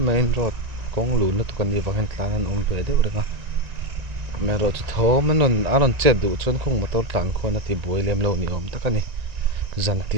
main road kong lu na tukan ni wangin tlan an om ve de urenga me ro chu thom anon anon che du chon khong motor tlan khona ti boi lem lo ni om takani zan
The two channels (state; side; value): late; left; 1.9 ms